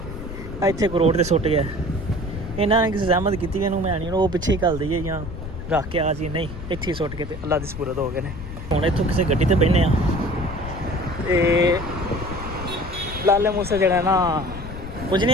ਇੱਥੇ ਕੋਈ ਰੋਡ 'ਤੇ ਸੁੱਟ ਗਿਆ, ਇਹਨਾਂ ਨੇ ਕਿਸੇ ਜ਼ਹਿਮਤ ਕੀਤੀ ਇਹਨੂੰ ਮੈਂ ਨਹੀਂ, ਉਹ ਪਿੱਛੇ ਹੀ ਘੱਲ ਦਈਏ ਜਾਂ ਰੱਖ ਕੇ ਆ ਜੀ, ਨਹੀਂ ਇੱਥੇ ਹੀ ਸੁੱਟ ਕੇ ਤੇ ਅੱਲਾ ਦੀ ਸਪੁਰਦ ਹੋ ਗਏ ਨੇ। ਹੁਣ ਇੱਥੋਂ ਕਿਸੇ ਗੱਡੀ 'ਤੇ ਬਹਿੰਦੇ ਆ ਤੇ ਲਾਲੇ ਮੂਸੇ ਜਿਹੜਾ ਨਾ ਪੁੱਜਨੇ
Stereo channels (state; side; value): noise; left; rumble, 10 dB below the sound